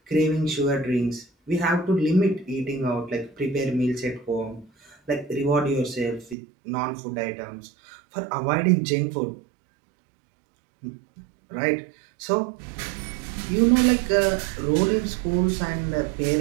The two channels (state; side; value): drops out; left; at 6.4 s